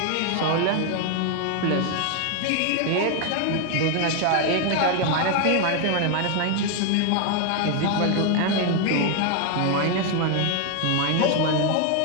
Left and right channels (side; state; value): both; different; correlation 0.01